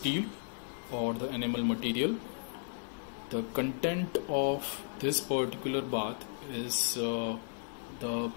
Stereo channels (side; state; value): right; silent; digital silence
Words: or the enamel material. The content of this particular bath is the